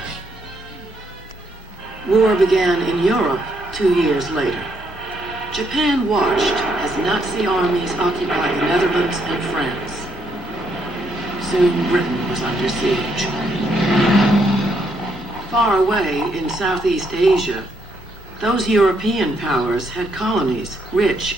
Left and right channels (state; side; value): normal; both; correlation 0.74